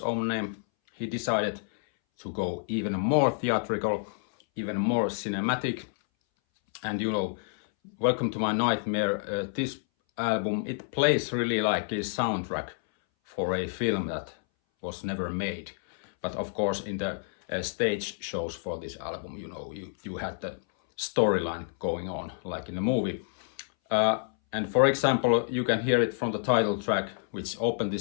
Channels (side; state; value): right; silent; 59 dB below the other